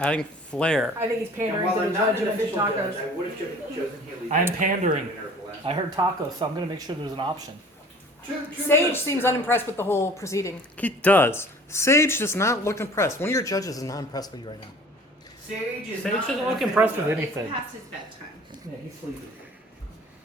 flair. I think he's And pandering while to the I'm not judge an and official judge, tacos. I would have chosen Haley. I am pandering. I heard tacos, so I'm gonna make sure there's an option. Two Sage minutes. seems unimpressed with the whole proceeding. He does. Sage does not look impressed. One of your judges is not impressed with you right now. Sage is Sage not doesn't an look official impressed with judge. anything. Past his bedtime. Yeah, he's sleeping.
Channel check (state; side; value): normal; both; correlation 0.47